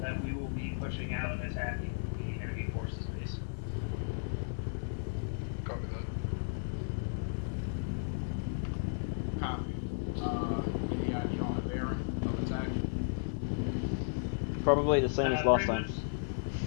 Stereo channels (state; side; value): silent; right; digital silence